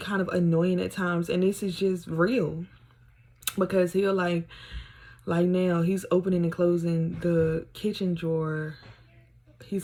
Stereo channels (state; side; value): identical; both; correlation 1.00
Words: kind of annoying at times. And this is just real, because he'll like now he's opening and closing the kitchen drawer.